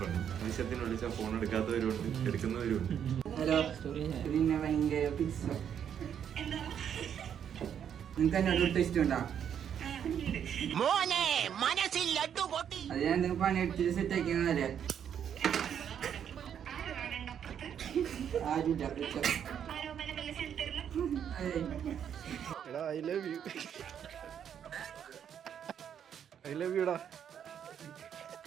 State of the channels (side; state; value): left; quieter; 8.7 dB